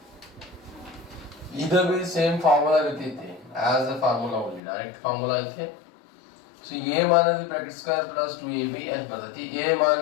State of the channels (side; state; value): right; drops out; at 4.6 s